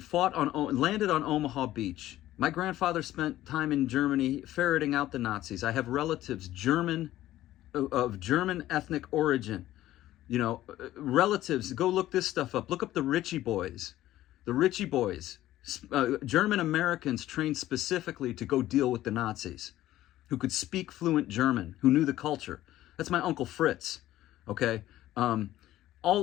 Omaha Beach. My grandfather spent time in Germany ferreting out the Nazis. I have relatives of German ethnic origin. Relatives, go look this stuff up. Look up the Ritchie Boys. The Ritchie Boys, German Americans trained specifically to go deal with the Nazis, who could speak fluent German, who knew the culture. That's my Uncle Fritz, okay?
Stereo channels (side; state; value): right; quieter; 14.4 dB